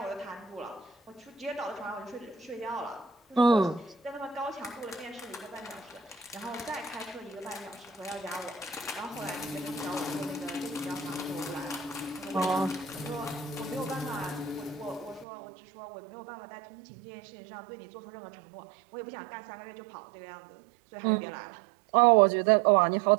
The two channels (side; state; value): left; drops out; at 15.2 s